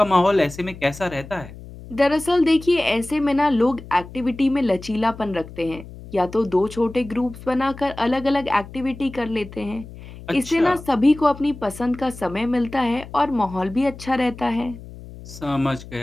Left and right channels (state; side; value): noise; left; hum, 16 dB below the sound